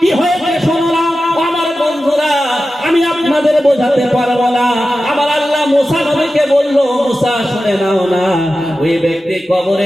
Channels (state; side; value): normal; both; correlation 0.93